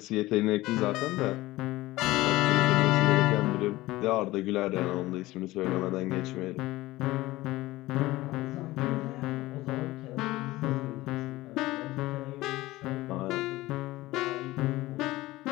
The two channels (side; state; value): right; quieter; 18.3 dB